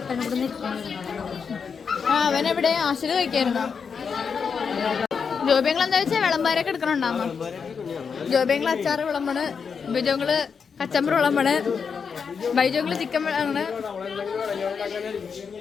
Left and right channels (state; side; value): quieter; right; 6.1 dB